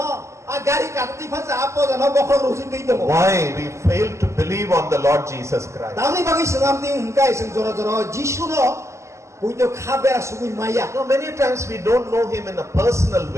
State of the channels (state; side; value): late; left; 0.14 ms